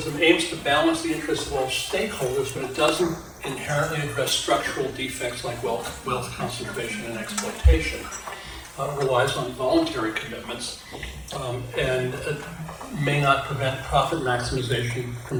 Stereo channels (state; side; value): identical; both; correlation 1.00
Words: aims to balance the interests of all stakeholders, but it doesn't inherently address structural defects like wealth concentration and exploitation. Relies on voluntary commitments and may not prevent profit maximization